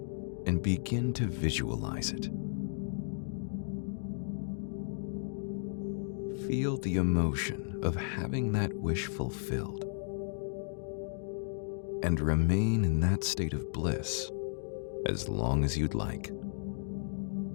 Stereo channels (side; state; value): right; silent; digital silence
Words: and begin to visualize it. Feel the emotion of having that wish fulfilled and remain in that state of bliss as long as you'd like.